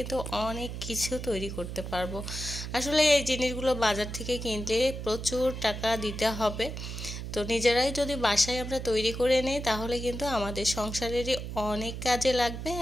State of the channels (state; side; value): noise; right; hum, 7 dB below the sound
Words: অনেক কিছু তৈরি করতে পারবো। আসলে এই জিনিসগুলো বাজার থেকে কিনলে প্রচুর টাকা দিতে হবে, তো নিজেরাই যদি বাসায় আমরা তৈরি করে নিই তাহলে কিন্তু আমাদের সংসারেরই অনেক কাজে লাগবে